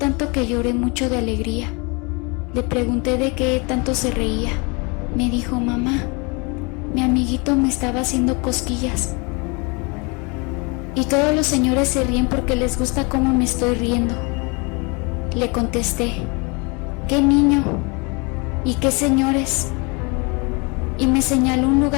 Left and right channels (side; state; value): right; quieter; 30.2 dB